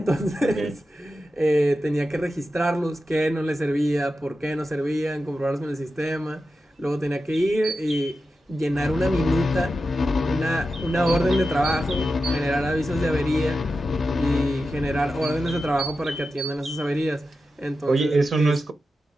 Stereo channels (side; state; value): both; normal; correlation 0.91